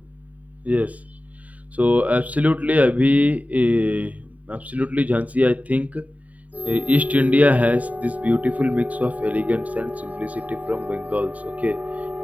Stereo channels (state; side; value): late; left; 0.071 ms